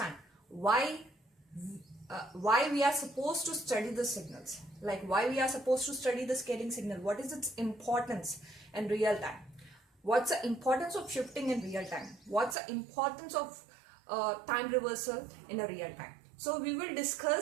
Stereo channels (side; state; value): left; drops out; at 12.6 s